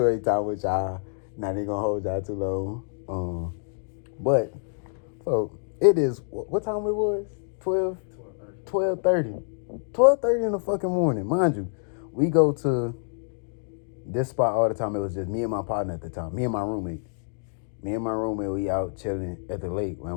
time with y'all. Not even gonna hold y'all too long. But so it is. What time it was? 12:30. 12:30 in the fucking morning, mind you. We go to this spot all the time. It was just me and my partner at the time. Me and my roommate. We out chilling at the lake.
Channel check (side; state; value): right; silent; digital silence